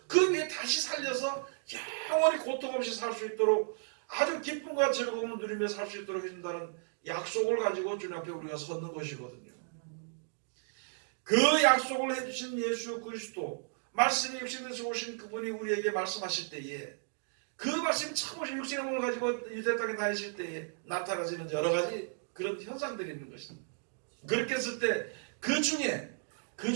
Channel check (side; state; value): left; silent; digital silence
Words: 그 위에 다시 살려서 영원히 고통 없이 살 수 있도록 아주 기쁨과 즐거움을 누리며 살 수 있도록 해준다는 약속을 가지고 주님 앞에 우리가 섰는 것이거든요. 그 약속을 해주신 예수 그리스도 말씀이 육신에서 오신 그분이 우리에게 말씀하실 때에 그 말씀이 처음 오신 육신의 몸을 가지고 유대 땅에 다니실 때에 나타나지는 여러 가지 그런 현상들이 있는 것입니다. 그렇게 했을 때 그